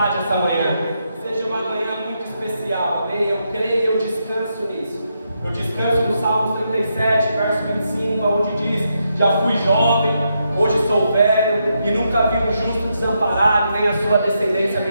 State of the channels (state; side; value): inverted; both; correlation -0.81